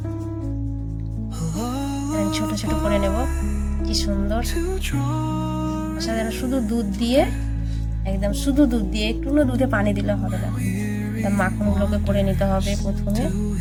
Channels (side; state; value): both; identical; correlation 1.00